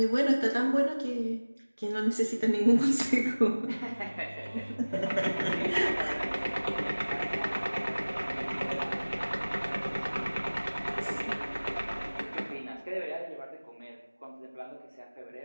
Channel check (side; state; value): both; inverted; correlation -1.00